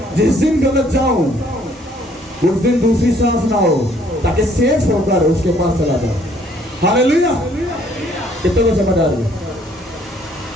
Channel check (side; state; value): both; normal; correlation 0.62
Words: जिस दिन गलत जाऊं उस दिन दूसरी सांस ना हो, ताकि सेफ होकर उसके पास चला जाए। हालेलुया। कितने को समझ आ रही है?